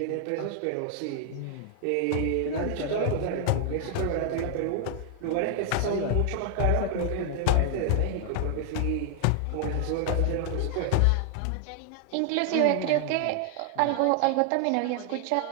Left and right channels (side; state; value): both; different; correlation 0.00